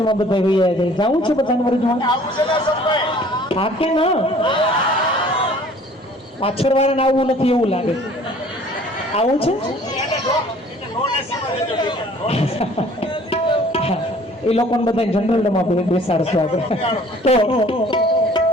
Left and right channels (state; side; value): normal; both; correlation 0.53